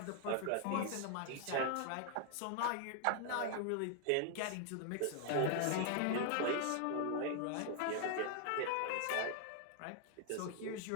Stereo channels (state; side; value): different; both; correlation 0.00